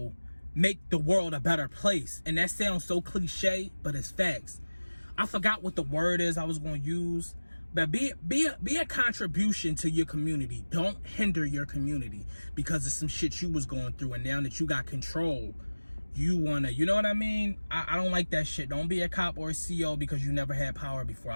make the world a better place. And that sounds so cliche, but it's facts. I forgot what the word is I was going to use, but be a contribution to your community. Don't hinder your community because of some shit you was going through, and now that you got control, you wanna, you know what I mean? I don't like that shit. Don't be a cop or a CO because you never had power before.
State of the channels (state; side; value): inverted; both; correlation -1.00